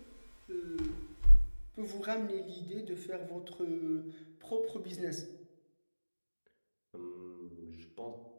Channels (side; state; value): both; inverted; correlation -1.00